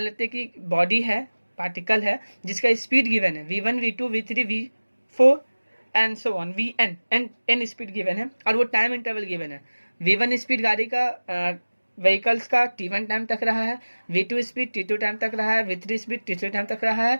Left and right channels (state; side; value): inverted; both; correlation -1.00